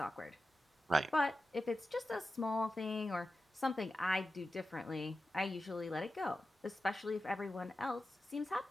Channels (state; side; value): normal; both; correlation 0.93